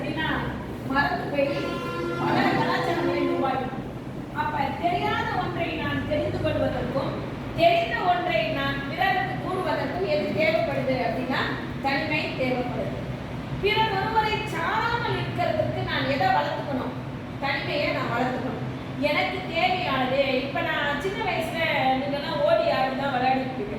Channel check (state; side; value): identical; both; correlation 1.00